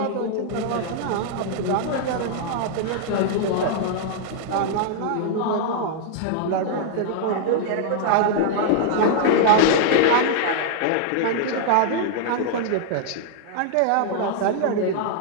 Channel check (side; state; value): both; different; correlation -0.01